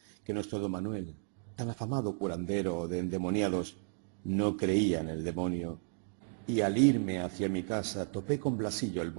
que nuestro don Manuel, tan afamado curandero de endemoniados, no creía en el demonio. Y al irme hacia mi casa topé con Blasillo el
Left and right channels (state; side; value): silent; left; 55 dB below the other